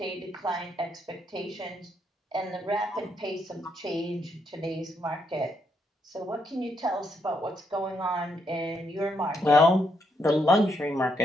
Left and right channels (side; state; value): both; normal; correlation 0.77